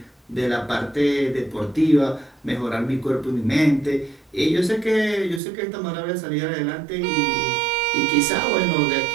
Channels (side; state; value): left; drops out; at 5.4 s